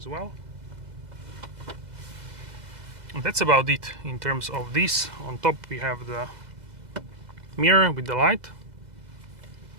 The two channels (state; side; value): late; left; 2.0 ms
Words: well. And that's about it in terms of this. On top we have the mirror with the light,